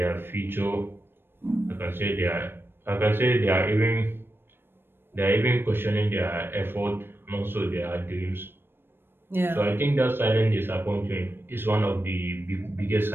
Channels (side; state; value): left; late; 0.10 ms